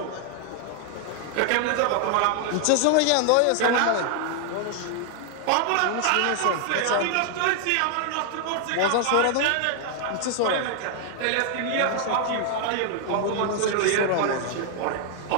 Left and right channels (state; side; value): different; both; correlation 0.00